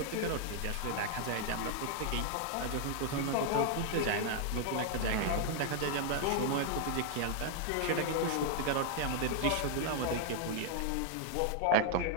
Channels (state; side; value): different; both; correlation 0.00